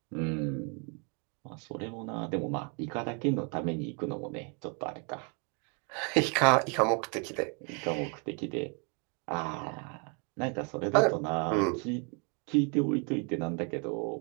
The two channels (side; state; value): left; quieter; 36.4 dB